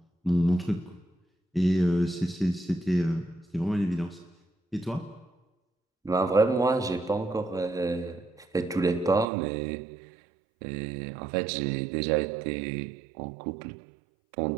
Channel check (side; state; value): left; drops out; at 9.2 s